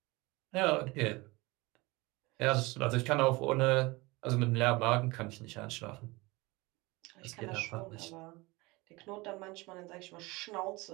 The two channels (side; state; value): left; quieter; 23.3 dB